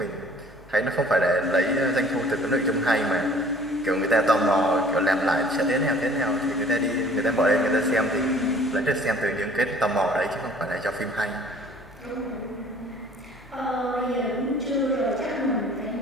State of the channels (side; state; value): both; normal; correlation 0.52